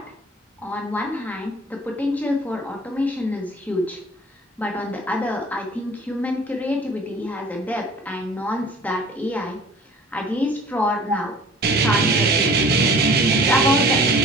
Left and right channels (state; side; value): normal; both; correlation 0.47